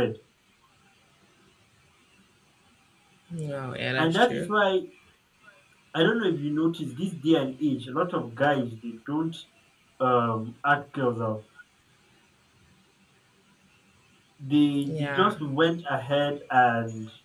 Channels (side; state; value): both; identical; correlation 1.00